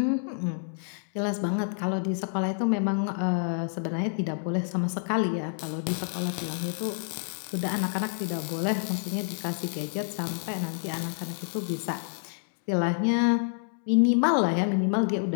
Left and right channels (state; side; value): silent; right; digital silence